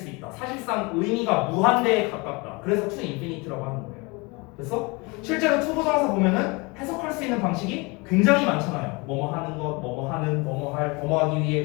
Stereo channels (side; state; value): right; quieter; 27.1 dB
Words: 있다. 사실상 의미가 무한대에 가깝다. 그래서 to infinite라고 하는 거예요. 그래서 실제로 to 부정사 보면은 해석할 수 있는 방식이 굉장히 많잖아요. 뭐뭐 하는 것, 뭐뭐 하는, 뭐뭐 할, 뭐뭐 하기 위해,